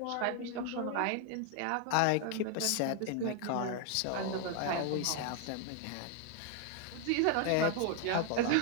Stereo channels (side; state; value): both; different; correlation 0.01